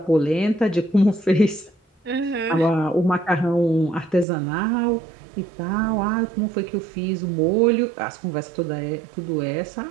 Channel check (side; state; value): left; drops out; at 4.2 s